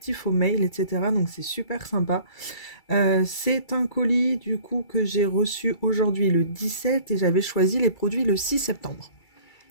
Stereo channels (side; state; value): right; late; 2.3 ms